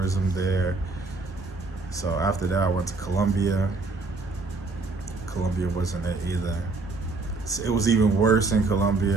there. So after that, I went to Colombia. Colombia wasn't it either. It was even worse in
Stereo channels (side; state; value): left; quieter; 3.6 dB